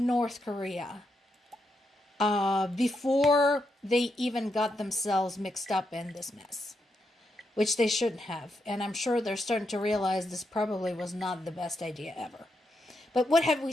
Korea before they even got themselves mixed up in this mess, which they shouldn't have. And I'm sure they're starting to realize this probably was not the best idea ever. But what have we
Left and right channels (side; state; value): both; normal; correlation 0.82